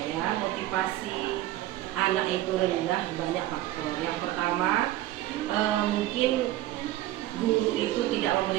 motivasi anak itu rendah banyak faktor. Yang pertama, mungkin guru itu tidak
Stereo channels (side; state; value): left; quieter; 14.9 dB